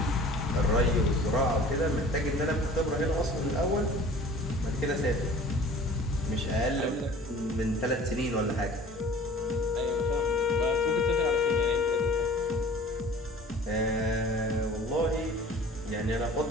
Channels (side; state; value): both; normal; correlation 0.46